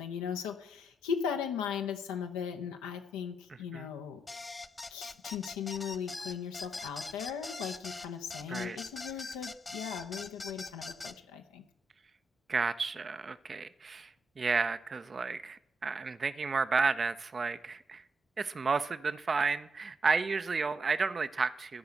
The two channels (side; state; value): both; normal; correlation 0.80